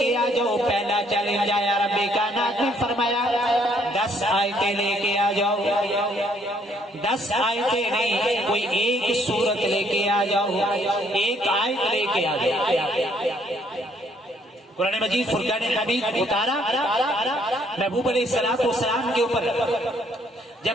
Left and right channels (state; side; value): normal; both; correlation 0.67